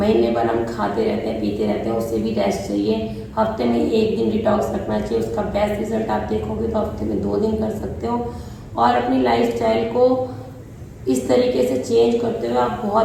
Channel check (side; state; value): both; identical; correlation 1.00